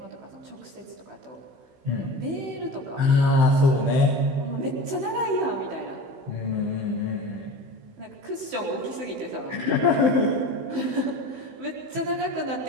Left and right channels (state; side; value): late; left; 15 ms